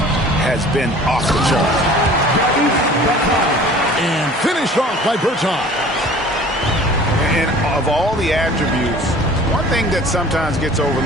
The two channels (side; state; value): both; normal; correlation 0.46